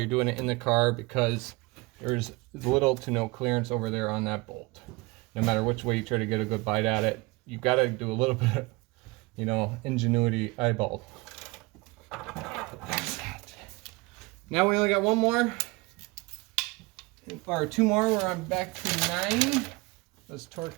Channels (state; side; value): quieter; left; 24.1 dB